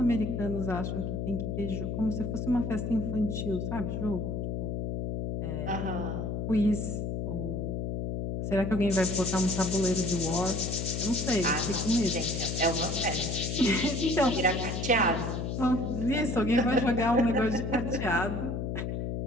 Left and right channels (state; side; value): noise; left; hum, 2 dB below the sound